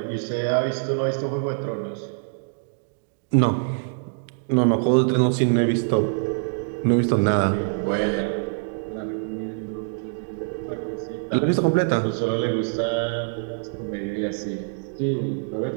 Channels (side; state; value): left; silent; digital silence